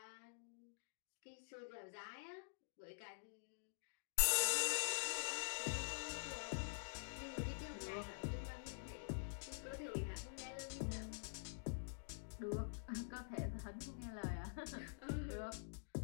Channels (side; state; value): right; silent; digital silence